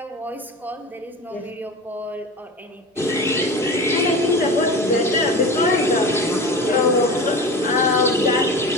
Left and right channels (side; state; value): both; normal; correlation 0.31